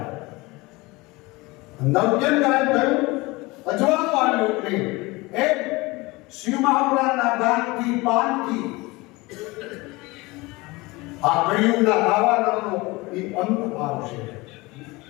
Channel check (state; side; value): quieter; right; 22.9 dB